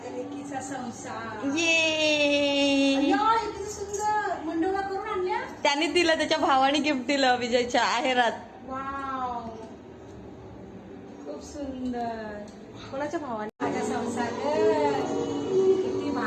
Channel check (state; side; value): identical; both; correlation 1.00